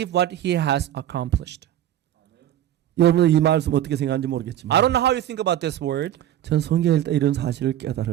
what he has accomplished. 여러분은 이 말씀 어떻게 생각하는지 I 모르겠지만 don't know how you think about this word, 전 성경에 일단 이런 사실을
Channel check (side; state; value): left; quieter; 11.9 dB